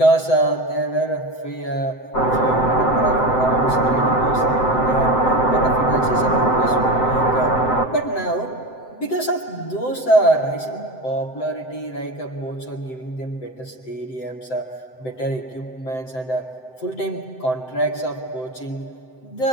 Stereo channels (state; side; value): late; right; 7.8 ms